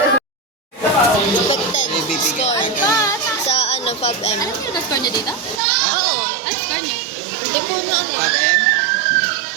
expected score sa ano ano, Fab M. Alam niyo na score niyo dito? Oo. Ano score niyo? Hindi ko na ano. Pag M?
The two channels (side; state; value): left; drops out; at 5.6 s